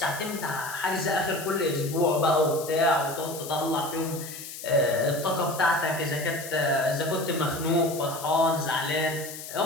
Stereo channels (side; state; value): left; noise; hiss, 11 dB below the sound